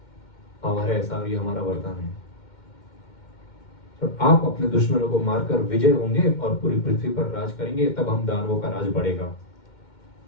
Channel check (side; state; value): right; late; 2.1 ms